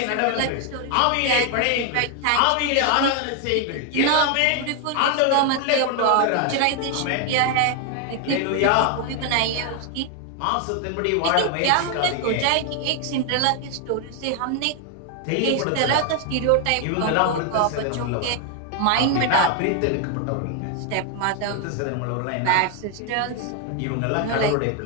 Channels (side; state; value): both; different; correlation 0.01